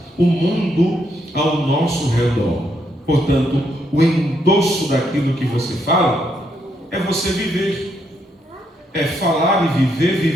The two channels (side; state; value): both; normal; correlation 0.76